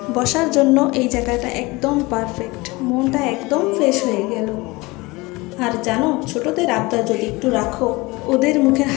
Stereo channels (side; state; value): right; quieter; 23.1 dB